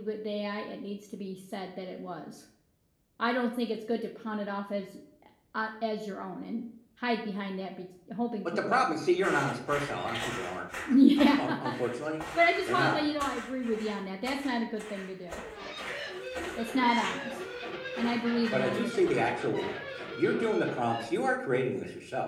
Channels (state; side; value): identical; both; correlation 1.00